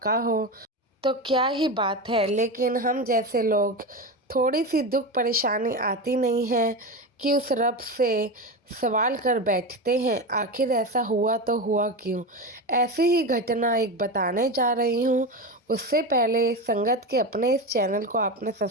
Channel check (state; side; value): normal; both; correlation 0.20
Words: हो तो क्या ही बात है। लेकिन हम जैसे लोग थोड़ी सी दुख परेशानी आती नहीं है कि उस रब से सवाल कर बैठते हैं, आखिर ऐसा हुआ तो हुआ क्यों। ऐसी ही घटना एक बताने जा रही हूँ। उससे पहले संगत के अपने इस चैनल को आपने